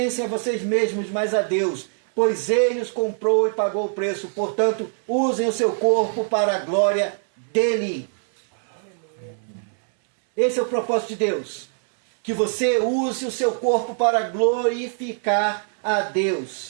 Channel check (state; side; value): silent; left; 62 dB below the other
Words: a vocês mesmos, mas a Deus, pois Ele os comprou e pagou o preço. Portanto, usem o seu corpo para a glória dEle. Esse é o propósito de Deus. Que você use o seu corpo para glorificar a